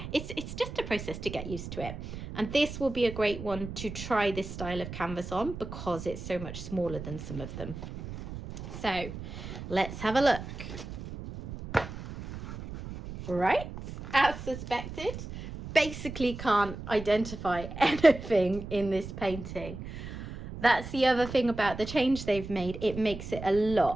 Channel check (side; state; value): right; noise; rumble, 10 dB below the sound